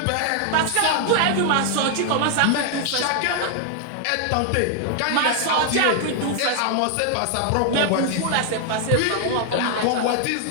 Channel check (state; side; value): different; both; correlation 0.00